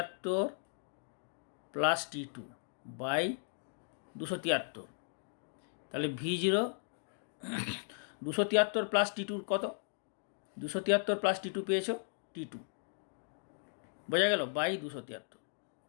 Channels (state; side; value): silent; right; digital silence